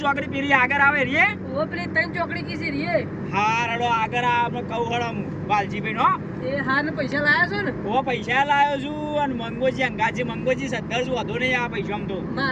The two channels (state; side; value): identical; both; correlation 1.00